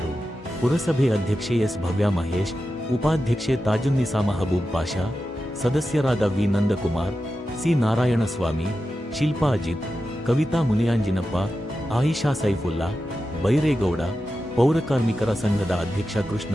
ಪುರಸಭೆ ಅಧ್ಯಕ್ಷೆ ಎಸ್ ಭವ್ಯಾಮಹೇಶ್, ಉಪಾಧ್ಯಕ್ಷೆ ತಾಜುನ್ನಿಸಾ ಮಹಬೂಬ್ ಪಾಷಾ, ಸದಸ್ಯರಾದ ವಿ ನಂದಕುಮಾರ್, ಸಿ ನಾರಾಯಣಸ್ವಾಮಿ, ಶಿಲ್ಪಾ ಅಜಿತ್, ಕವಿತಾ ಮುನಿಯಾಂಜಿನಪ್ಪ, ಆಯಿಷಾ ಸೈಫುಲ್ಲಾ, ಬೈರೇಗೌಡ, ಪೌರಕಾರ್ಮಿಕರ ಸಂಘದ ಅಧ್ಯಕ್ಷ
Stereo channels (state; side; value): normal; both; correlation 0.91